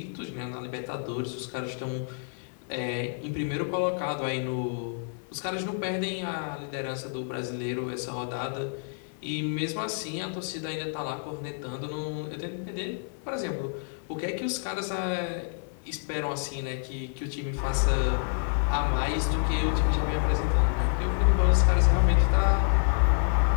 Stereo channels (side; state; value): right; silent; 59 dB below the other